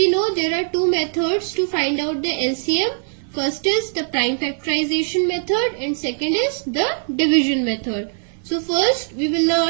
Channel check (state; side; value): silent; left; 56 dB below the other